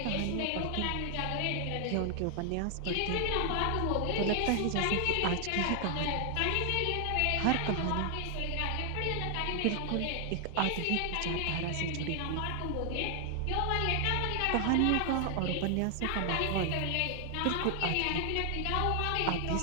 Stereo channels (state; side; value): different; both; correlation 0.00